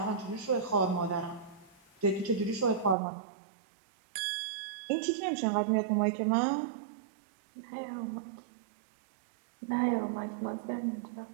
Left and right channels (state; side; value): drops out; left; at 3.0 s